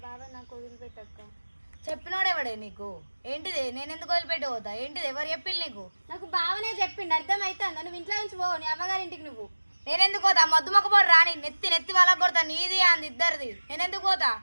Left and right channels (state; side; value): inverted; both; correlation -1.00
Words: బావ నాకు వదిలిపెట్టక్క. చెప్పినోడెవడే నీకు? ఏంటిది? నేను ఎందుకు వదిలిపెట్టి పోతా? ఏంటిది? ఎవరు చెప్పింది నీకు? నాకు బావనే చెప్పిండు. అర్థమవుతుందా? నువ్వు ఇంట్లో నుంచి పోవు, నీ అమ్మగారింటికి. నువ్వు నేనెందుకు పోతా? మద్దు మొక్క పోడు రాని నెత్తి వాళ్ళకి కొడతా. నీది అంది ఇద్దరిది. నేనెందుకు పోతా?